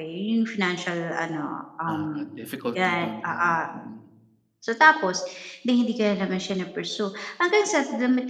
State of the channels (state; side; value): identical; both; correlation 1.00